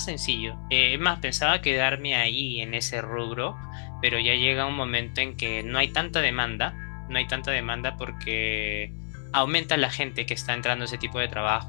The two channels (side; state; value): right; silent; 60 dB below the other